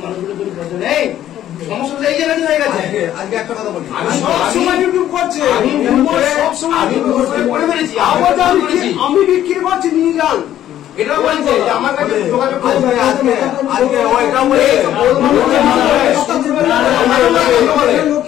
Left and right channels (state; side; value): quieter; right; 12.0 dB